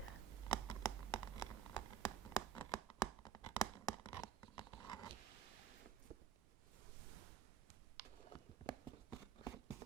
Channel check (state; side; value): quieter; left; 8.9 dB